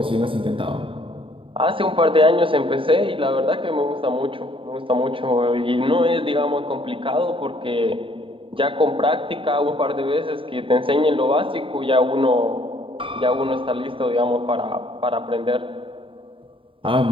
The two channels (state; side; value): late; left; 0.25 ms